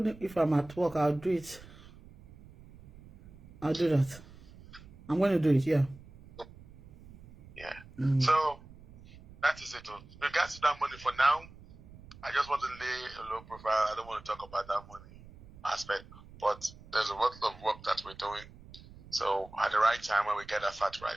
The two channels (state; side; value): noise; right; rumble, 20 dB below the sound